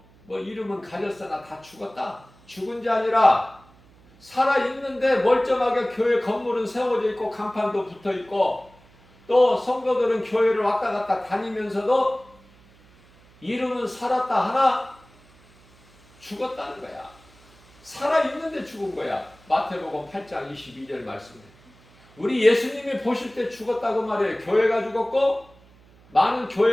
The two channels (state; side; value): noise; right; hum, 28 dB below the sound